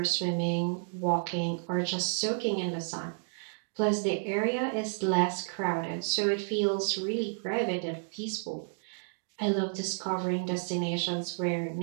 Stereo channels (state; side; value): silent; left; digital silence